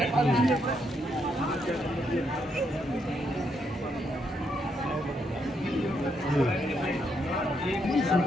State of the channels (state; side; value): normal; both; correlation 0.77